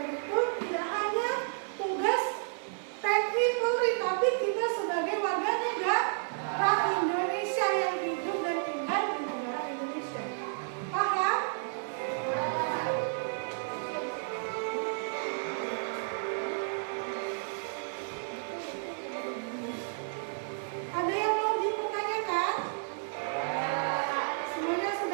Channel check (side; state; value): left; silent; digital silence